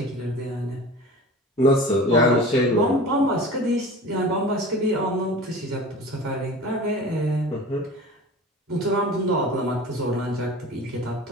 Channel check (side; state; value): both; normal; correlation 0.37